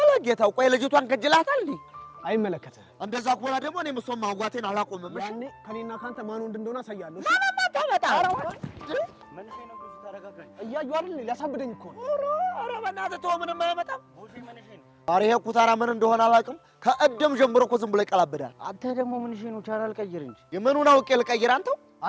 ጌታው፣ ቆይ ልጅቷን ከጅላታል እንዴ? አይመለከትህም። እንደዛ ከሆነ ደግሞ እኔም እሷን ማውጋቴን አላቆምም። እሺ ያኔ ከኔና ካንተ ማን ወንድ እንደሆነ አሳያለሁ። ማማ ታመጣ እያዩ አይደል? ሊያሳብደኝ እኮ ነው። ኧረ በእናትህ ተው፣ ምንም አይመጣም። ኧረ ይሄ ኩታራ ምን እንደሆነ አላውቅም። ከእድም ጀምሮ እኮ ዝም ብሎ ይቀላብዳል። አንተ ደግሞ ምን እሺ ነው? ቻናል ቀይር እንጂ። የምኑን አውቄ ልቀይር? አንተው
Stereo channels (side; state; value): both; identical; correlation 1.00